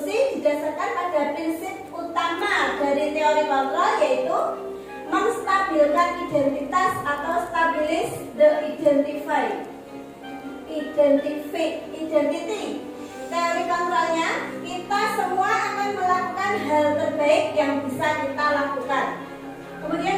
didasarkan pada prinsip utama dari teori kontrol, yaitu menstabilkan identitas atau stabilis the identity. Teori kontrolnya, kita semua akan melakukan hal terbaik yang bisa kita lakukan. Kemudian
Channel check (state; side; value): identical; both; correlation 1.00